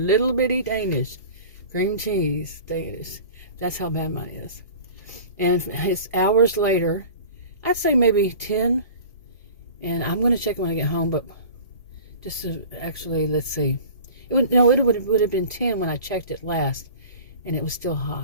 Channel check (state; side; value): inverted; both; correlation -0.41